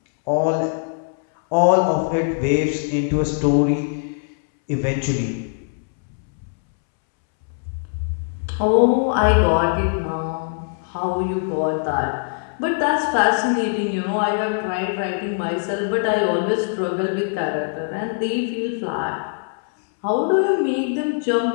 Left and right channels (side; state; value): right; silent; 64 dB below the other